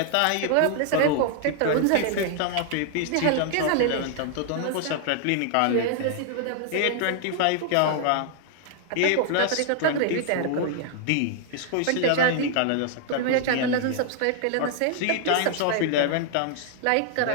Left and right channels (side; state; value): both; different; correlation 0.00